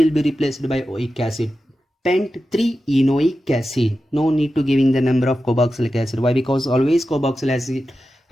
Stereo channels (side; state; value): both; normal; correlation 0.92